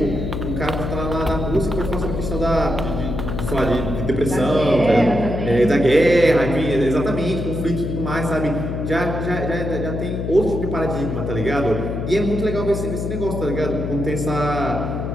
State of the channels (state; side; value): noise; left; hum, 3 dB below the sound